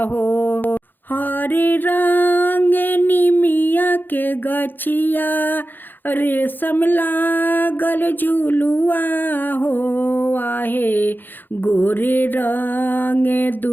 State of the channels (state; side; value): late; right; 0.091 ms